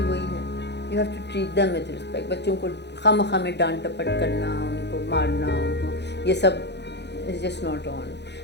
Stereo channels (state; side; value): late; right; 0.50 ms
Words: वही है, you have to treat them with respect. बच्चों को खामखा में डांट टपट करना, उनको मारना, उनको ये सब is just not on.